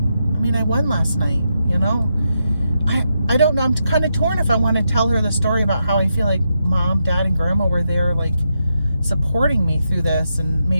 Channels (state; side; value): inverted; both; correlation -0.84